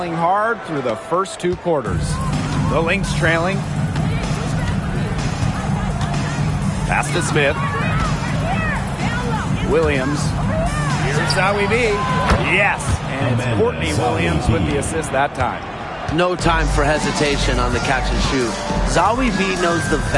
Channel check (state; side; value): identical; both; correlation 1.00